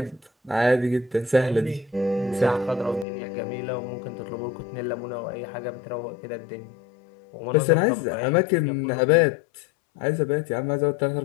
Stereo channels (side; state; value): right; drops out; at 3.1 s